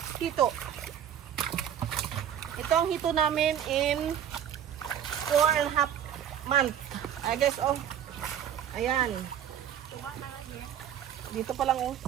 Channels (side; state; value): left; quieter; 9.6 dB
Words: hito. Ito ang hito namin in 4.5 months. Ay guys, oh. Ayan. Dito pa lang, oh.